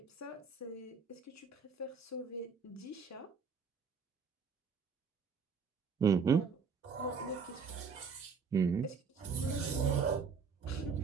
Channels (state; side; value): quieter; left; 5.6 dB